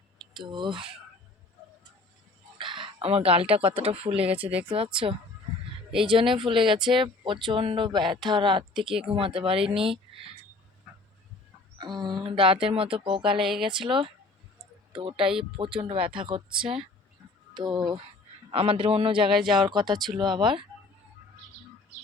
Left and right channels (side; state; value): right; quieter; 3.4 dB